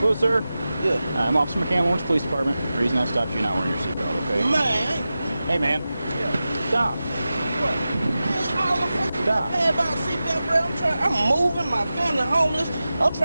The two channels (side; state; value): both; inverted; correlation -0.94